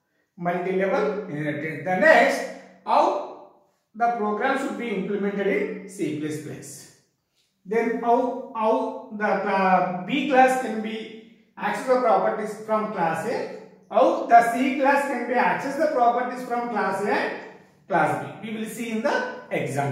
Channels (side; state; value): both; identical; correlation 1.00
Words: Multi-level inheritance. The next, how the program should be implemented in C++. Then how the B class can be access the properties from class A, how the C class can be access the properties from class A and class B. We will see in the